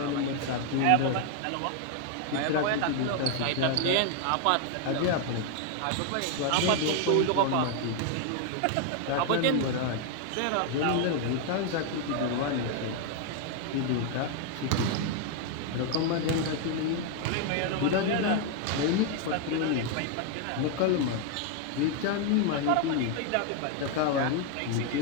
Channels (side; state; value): both; different; correlation 0.00